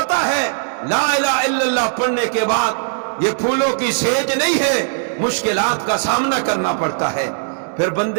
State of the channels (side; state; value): left; silent; digital silence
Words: ہے لا الہ الا اللہ پڑھنے کے بعد یہ پھولوں کی سیج نہیں ہے، مشکلات کا سامنا کرنا پڑتا ہے، پھر